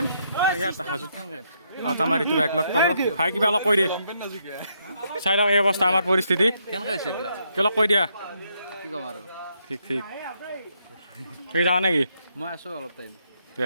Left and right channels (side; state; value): both; inverted; correlation -0.75